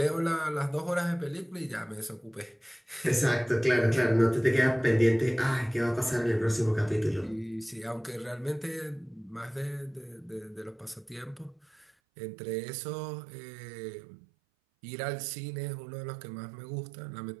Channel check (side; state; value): left; drops out; at 11.9 s